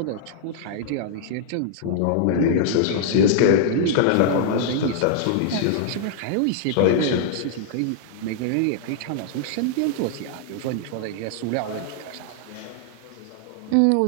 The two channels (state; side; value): different; both; correlation -0.01